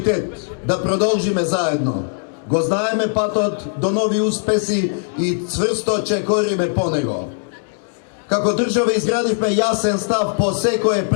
да продолжиме заедно. Го знаеме патот до нови успеси и цврсто чекориме по него. Како држава изградивме јасен став по секое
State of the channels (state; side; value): silent; right; digital silence